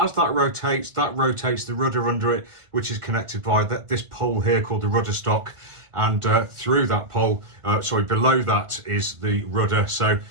that rotates the rudder under it, which is connected by this pole here called the rudder stock. And through that pole, below that is the rudder. So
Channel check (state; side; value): late; left; 1.5 ms